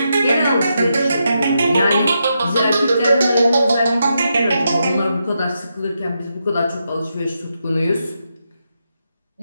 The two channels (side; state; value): both; inverted; correlation -0.84